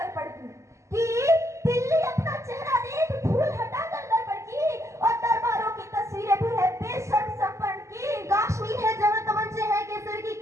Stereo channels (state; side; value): late; left; 0.14 ms